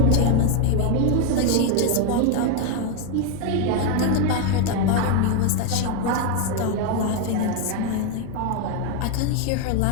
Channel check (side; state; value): both; different; correlation 0.01